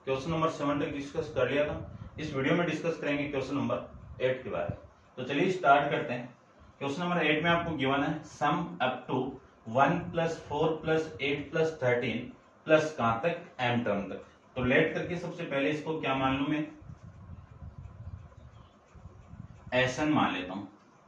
क्वेश्चन नंबर 7 तक डिस्कस कर लिया था। इस वीडियो में डिस्कस करेंगे क्वेश्चन नंबर 8 के बारे में। तो चलिए स्टार्ट करते हैं। क्वेश्चन नंबर 8 में आपको गिवन है सम अप टू 1 + 4 + 8 + 13 प्लस कहां तक, m टर्म तक। तो लेट करके सबसे पहले इसको क्या मान लूं मैं, Sn मान लेता हूं।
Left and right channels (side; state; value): both; identical; correlation 1.00